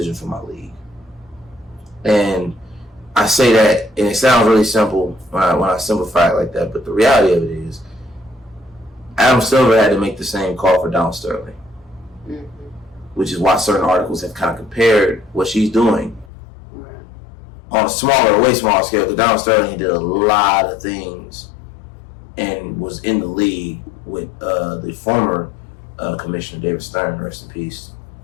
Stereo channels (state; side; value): drops out; right; at 16.3 s